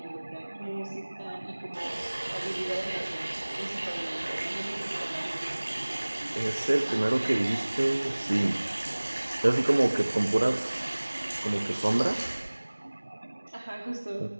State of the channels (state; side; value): inverted; both; correlation -1.00